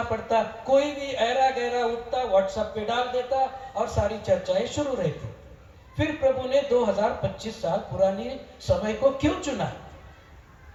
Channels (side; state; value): both; identical; correlation 1.00